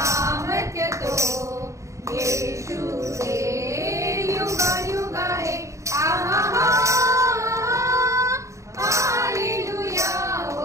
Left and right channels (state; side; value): late; left; 0.15 ms